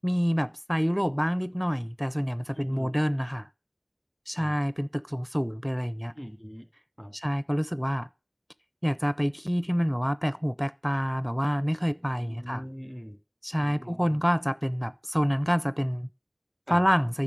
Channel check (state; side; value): identical; both; correlation 1.00